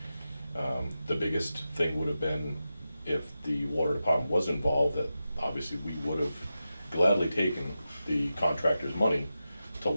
The biggest thing would have been if the water department was involved, that obviously we would have gladly taken the contractor's money to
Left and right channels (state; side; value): inverted; both; correlation -0.91